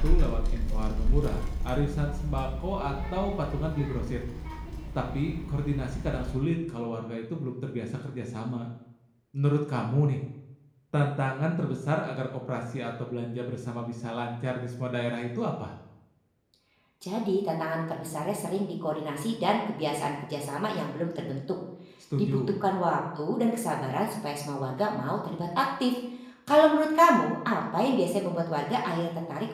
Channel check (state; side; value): identical; both; correlation 1.00